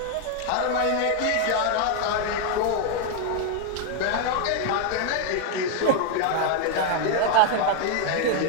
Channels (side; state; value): both; different; correlation 0.00